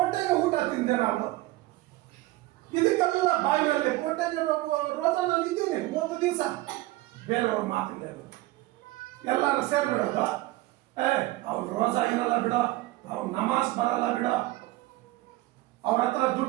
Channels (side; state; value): left; quieter; 18.4 dB